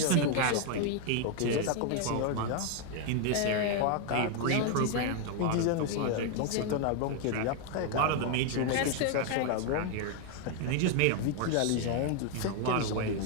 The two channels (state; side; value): different; both; correlation 0.01